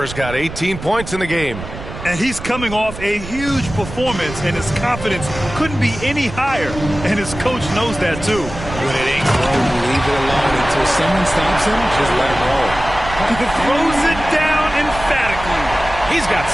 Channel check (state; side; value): noise; right; rumble, 11 dB below the sound